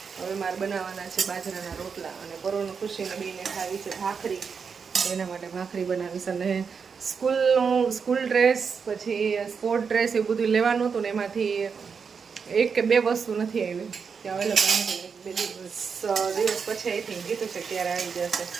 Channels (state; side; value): quieter; left; 5.9 dB